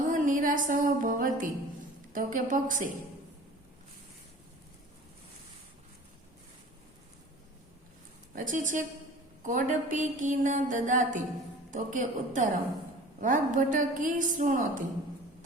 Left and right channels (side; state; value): both; normal; correlation 0.43